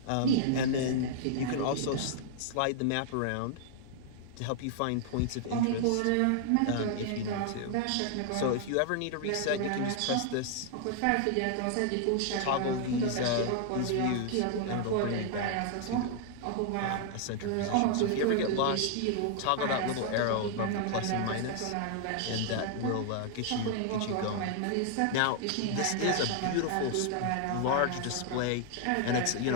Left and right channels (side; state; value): both; different; correlation -0.01